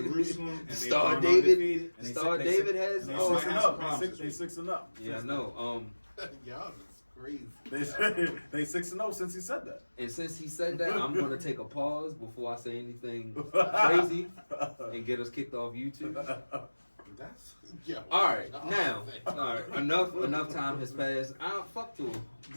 And Star David. Star David has. They 6-0. They 6-0. Yeah, I know. Y'all is crazy. They 6-0 since he said that. And since he said that, I'm gonna take a pause before I say anything crazy and get us kicked off YouTube. That's all right. Now, enough time has passed. Fuck to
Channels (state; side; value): inverted; both; correlation -1.00